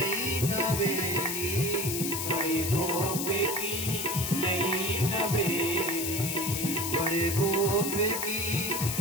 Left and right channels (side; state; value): left; noise; hiss, 2 dB below the sound